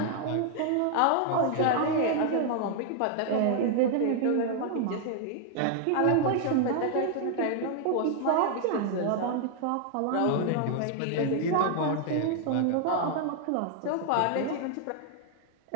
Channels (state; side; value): different; both; correlation 0.00